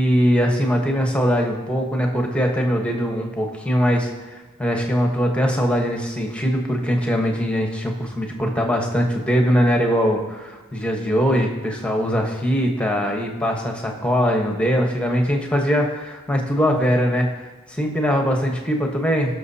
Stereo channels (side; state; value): both; normal; correlation 0.80